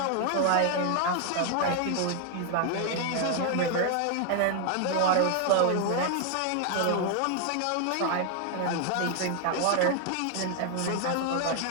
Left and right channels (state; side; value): different; both; correlation 0.00